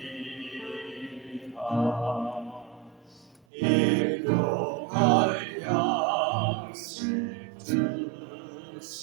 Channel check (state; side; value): drops out; left; at 3.4 s